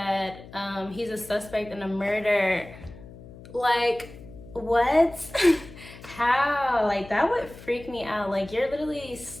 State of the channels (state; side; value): noise; left; hum, 17 dB below the sound